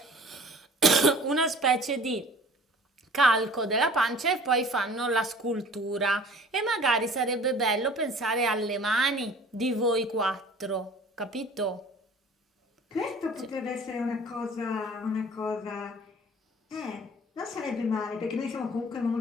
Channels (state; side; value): normal; both; correlation 0.47